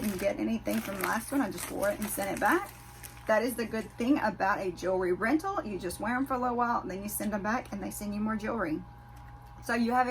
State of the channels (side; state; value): both; identical; correlation 1.00